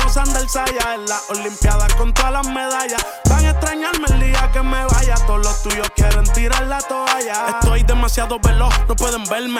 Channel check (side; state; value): both; identical; correlation 1.00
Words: Sander Saya. En las olimpiadas con todas las medallas. Van a extrañarme el día que me vaya. Todos los tuyos quieren tirar la toalla. Estoy demasiado veloz, no pueden